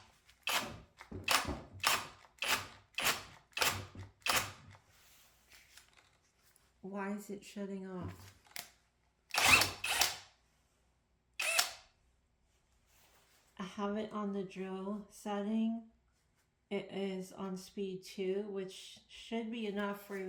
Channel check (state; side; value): identical; both; correlation 1.00